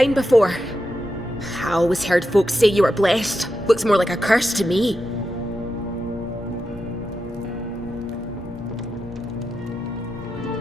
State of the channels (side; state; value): both; normal; correlation 0.88